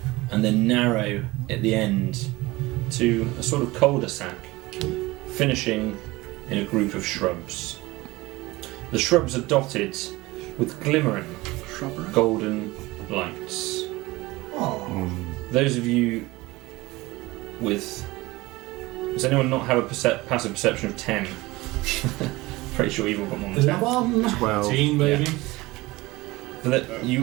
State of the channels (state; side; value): quieter; left; 20.7 dB